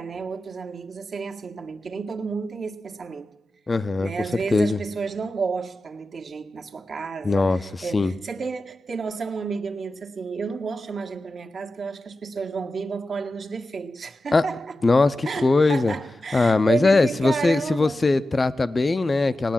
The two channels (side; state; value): both; normal; correlation 0.92